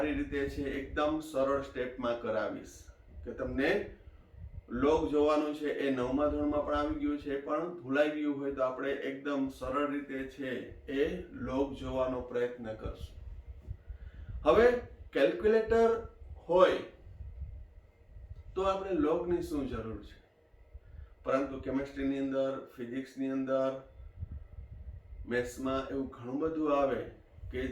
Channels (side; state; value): both; identical; correlation 1.00